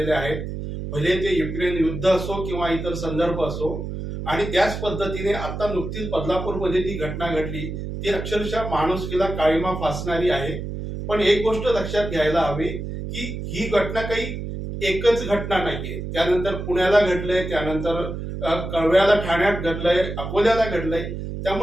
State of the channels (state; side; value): noise; right; hum, 6 dB below the sound